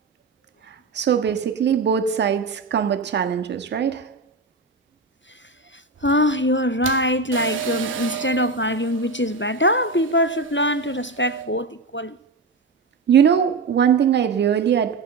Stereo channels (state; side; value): quieter; left; 3.7 dB